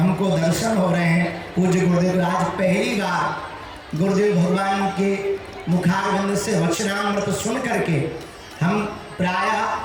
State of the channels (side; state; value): both; identical; correlation 1.00